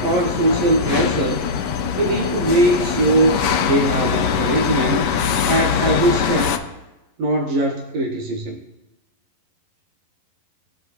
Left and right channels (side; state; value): left; late; 11 ms